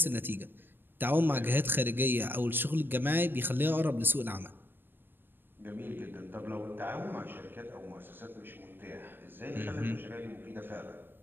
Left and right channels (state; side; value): late; left; 0.094 ms